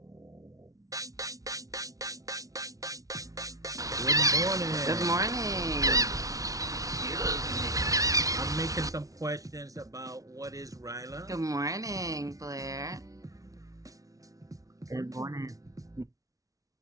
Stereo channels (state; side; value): late; left; 0.17 ms